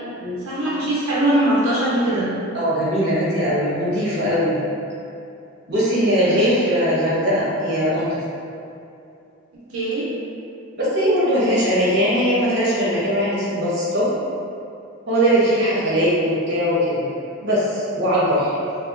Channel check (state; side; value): normal; both; correlation 0.24